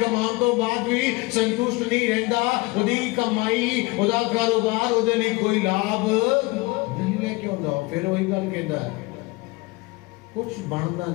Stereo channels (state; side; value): quieter; right; 23.5 dB